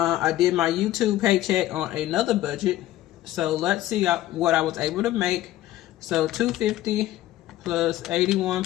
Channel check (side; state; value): right; quieter; 14.7 dB